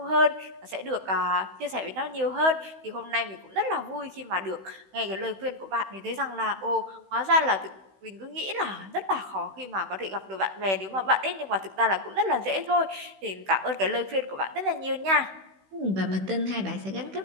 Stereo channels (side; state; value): left; late; 16 ms